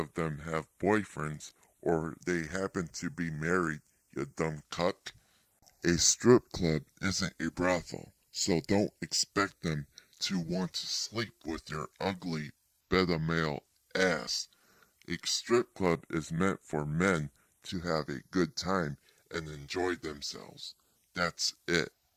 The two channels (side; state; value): both; identical; correlation 1.00